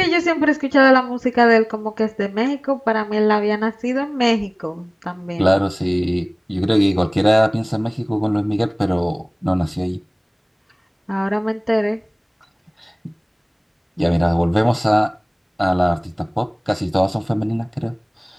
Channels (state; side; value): identical; both; correlation 1.00